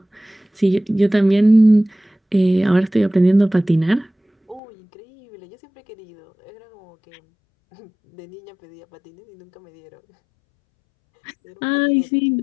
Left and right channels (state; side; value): drops out; right; at 4.6 s